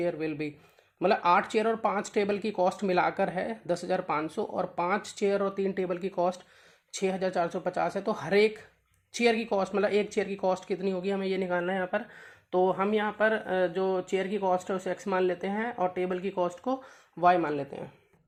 will be. मतलब 8 चेयर और 5 टेबल की कॉस्ट मिलाकर है 10,500, और 5 चेयर और 3 टेबल की कॉस्ट 6,450 है। तो हर एक चेयर की कॉस्ट, मतलब एक चेयर की कॉस्ट कितनी होगी हमें ये निकालना है यहाँ पर। तो हम यहाँ पर जो चेयर की कॉस्ट है उसे x मान लेते हैं और टेबल की कॉस्ट को y मान लेते हैं।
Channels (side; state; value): both; identical; correlation 1.00